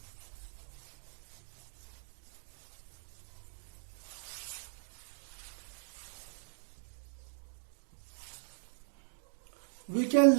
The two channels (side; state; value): left; silent; 52 dB below the other